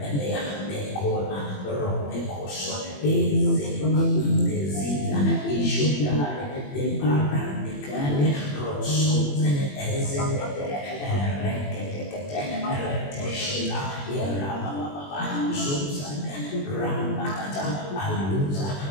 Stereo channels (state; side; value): late; right; 21 ms